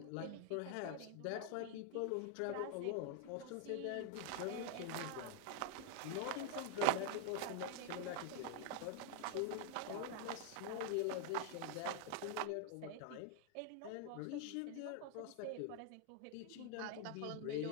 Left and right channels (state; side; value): different; both; correlation 0.00